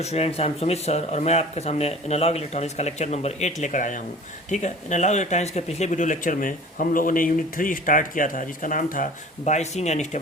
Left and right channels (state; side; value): normal; both; correlation 0.43